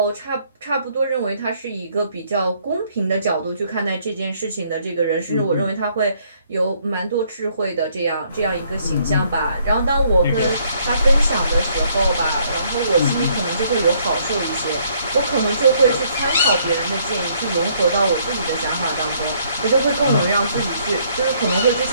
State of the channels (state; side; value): inverted; both; correlation -0.67